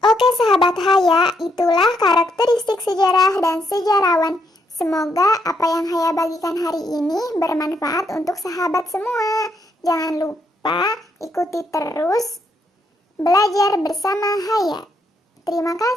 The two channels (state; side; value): normal; both; correlation 0.76